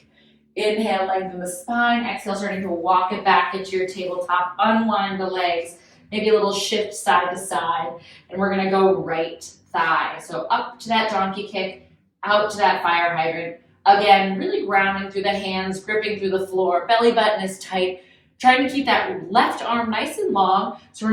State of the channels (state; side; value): identical; both; correlation 1.00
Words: Inhale, lengthen the spine. Exhale, starting to walk it back into your tabletop. Unwind the legs. Maybe a little shift side to side. And we're going to go right thigh. So up to that donkey kick, out to that fire hydrant. Again, really grounding through the hands, gripping through the floor. Belly button is tight. Trying to keep that left arm nice and long so we're